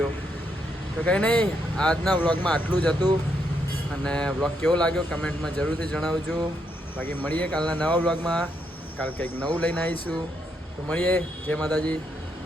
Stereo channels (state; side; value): normal; both; correlation 0.77